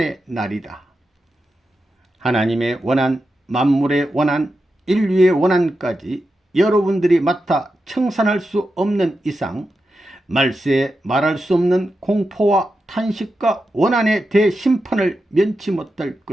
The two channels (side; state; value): both; normal; correlation 0.89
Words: 날이다. 하나님의 원한, 만물의 원한, 인류의 원한까지 여러분들이 맡아 청산할 수 없는 이상 말세에 말할 수 없는 공포와 탄식과 원한의 대심판을 면치 못할